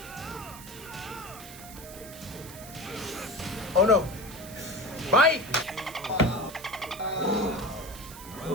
Oh no! Bite!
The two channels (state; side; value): noise; right; hiss, 15 dB below the sound